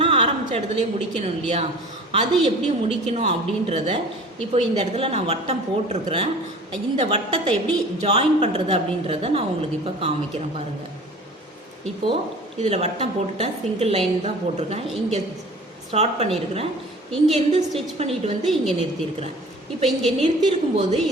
ஆரம்பித்த இடத்துலேயே முடிக்கணும் இல்லையா, அது எப்படி முடிக்கணும் அப்படின்றத இப்போ இந்த இடத்துல நான் வட்டம் போட்டிருக்கிறேன். இந்த வட்டத்தை எப்படி ஜாயின் பண்ணுறது அப்படின்றத நான் உங்களுக்கு இப்போ காமிக்கிறேன் பாருங்கள். இப்போது இதில் வட்டம் போட்டுட்டேன், சிங்கிள் லைன் தான் போட்டிருக்கேன். இங்கே ஸ்டார்ட் பண்ணியிருக்கிறேன், இங்கேருந்து ஸ்டிச் பண்ணிட்டு வந்து இங்கே நிறுத்தியிருக்கிறேன். இப்போ இங்கே நிறுத்தியிருக்கும்போது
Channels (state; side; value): normal; both; correlation 0.43